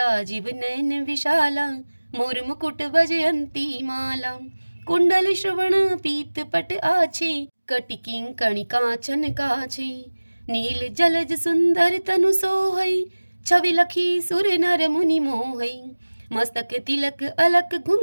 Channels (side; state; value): both; inverted; correlation -1.00